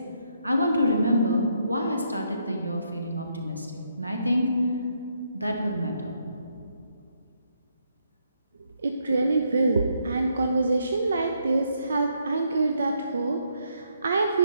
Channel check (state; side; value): inverted; both; correlation -0.75